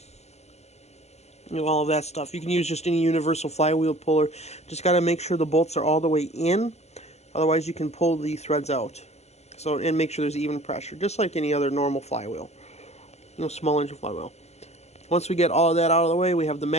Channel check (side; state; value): right; late; 0.31 ms